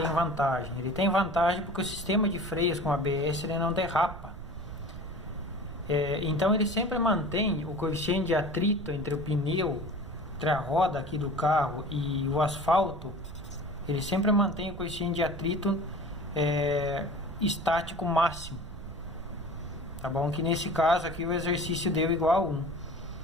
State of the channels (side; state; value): right; noise; rumble, 12 dB below the sound